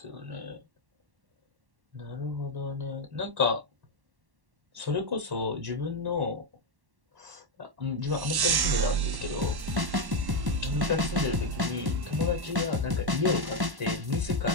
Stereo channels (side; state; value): left; late; 1.1 ms